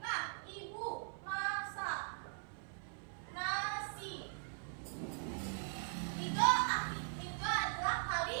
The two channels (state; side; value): silent; left; 51 dB below the other